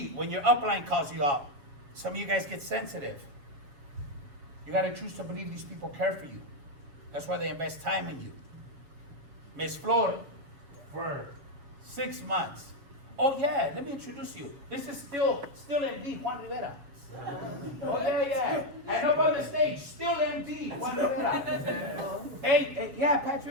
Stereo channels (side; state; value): left; late; 7.2 ms